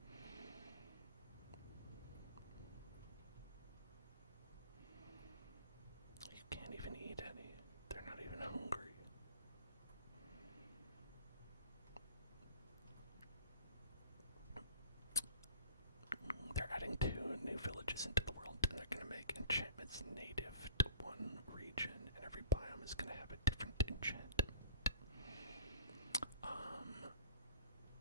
You can't even eat any. They're not even hungry. They're adding 2 new villages into the world, and they're going to make enchantments native to one region, and every biome is going to have a different enchantment.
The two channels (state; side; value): inverted; both; correlation -0.48